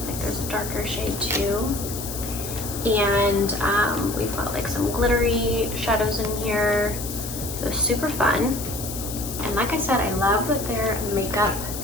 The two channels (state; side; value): noise; left; hiss, 8 dB below the sound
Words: like there's a darker shade too. And we've got like some glittery shadows in here. So super fun. And like I said, I love that their makeup